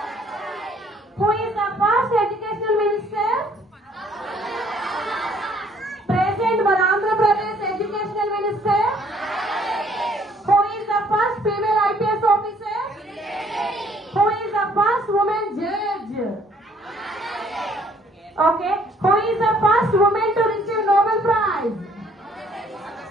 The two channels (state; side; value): normal; both; correlation 0.62